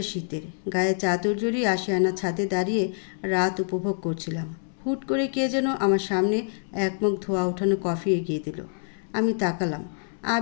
শীতের। গায়ে চাদর জড়িয়ে আশিয়ানা ছাদে দাঁড়িয়ে রাত উপভোগ করছিলাম। হুট করে কে যেন আমার সামনে এক মগ ধোয়া ওঠানো কফি এগিয়ে দিল। আমি তাকালাম।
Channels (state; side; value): silent; right; 61 dB below the other